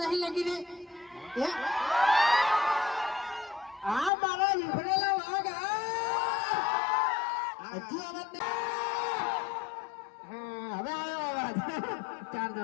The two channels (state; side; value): drops out; right; at 4.1 s